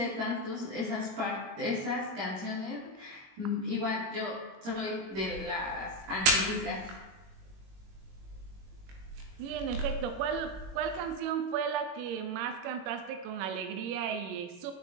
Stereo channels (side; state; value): left; late; 21 ms